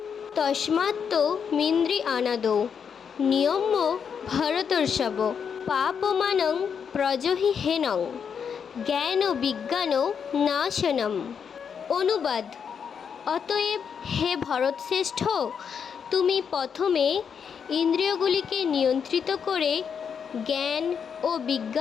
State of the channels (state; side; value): quieter; right; 7.0 dB